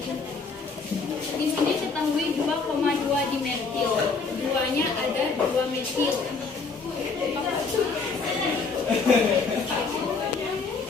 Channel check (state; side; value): quieter; right; 4.5 dB